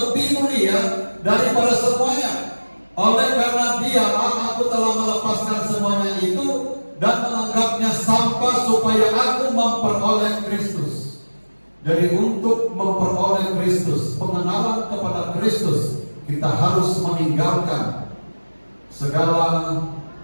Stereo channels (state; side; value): inverted; both; correlation -1.00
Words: mulia daripada semuanya. Oleh karena dialah aku telah melepaskan semuanya itu dan menganggapnya sampah supaya aku memperoleh Kristus. Jadi untuk memperoleh Kristus, pengenalan kepada Kristus, kita harus meninggalkan segala